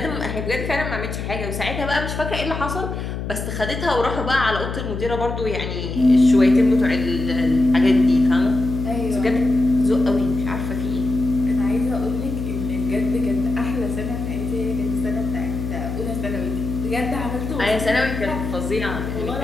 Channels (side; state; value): left; noise; hum, 5 dB below the sound